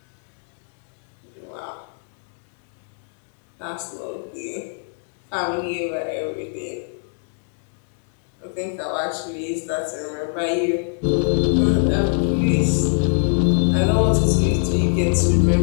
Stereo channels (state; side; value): silent; right; 63 dB below the other